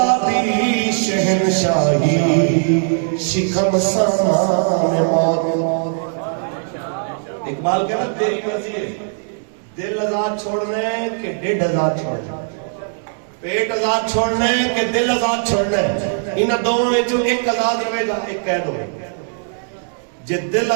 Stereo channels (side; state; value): left; silent; 66 dB below the other